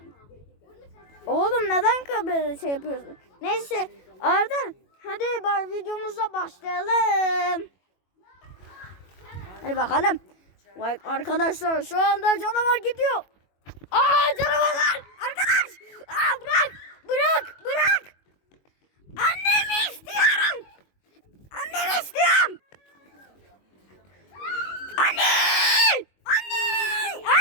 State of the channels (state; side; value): late; right; 21 ms